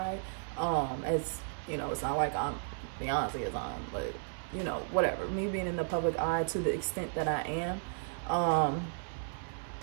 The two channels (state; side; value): silent; left; 55 dB below the other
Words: As you know, it's not like I'm Beyonce is on, but you know, whatever, me being in the public eye to the extent that I am,